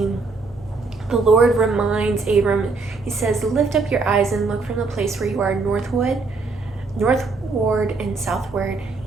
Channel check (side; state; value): left; quieter; 4.0 dB